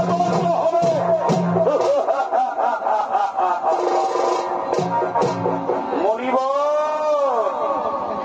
তপস্যা হবে। মনিব,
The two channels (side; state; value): both; identical; correlation 1.00